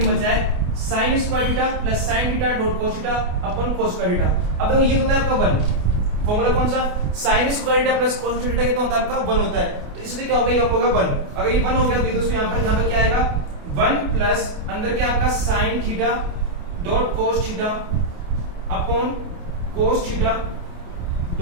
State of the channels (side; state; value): left; late; 28 ms